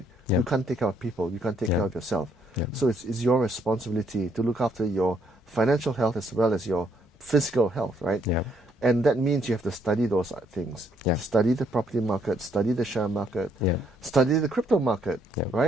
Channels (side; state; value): both; normal; correlation 0.70